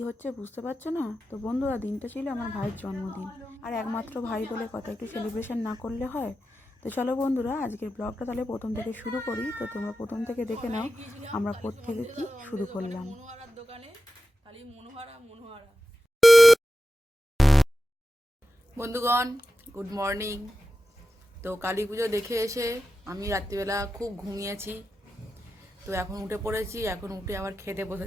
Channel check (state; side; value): normal; both; correlation 0.93